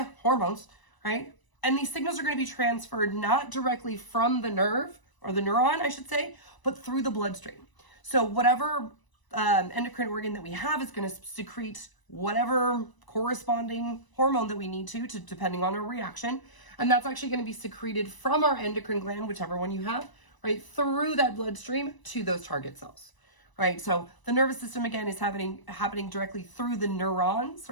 hormones, right? And these signals are going to be transferred not directly from the nerve, or the neuron, I should say, but through the bloodstream. So whatever endocrine organ that we have is going to secrete whatever corresponding hormone that we need to depending on our reaction. And that's actually going to be secreted from our endocrine gland, whichever one you have, right, through that bloodstream to those target cells. Right, so the nervous system, again, is happening directly through the neurons,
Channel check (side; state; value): right; late; 1.0 ms